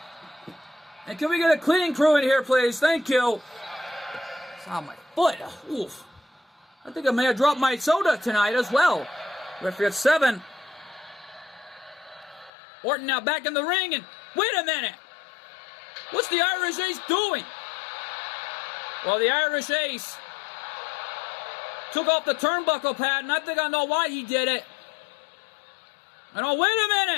And can we get a cleaning crew in here, please? Thank you. It's on my foot. Oof. I think I may have dropped my soda tonight as well. Referee at 7. Orton now back in the ring, and wait a minute. What's the Irish Ace doing? Well, the Irish Ace took off the turnbuckle pad, and I think I know why he did it. And oh, wait a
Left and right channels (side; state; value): right; drops out; at 12.5 s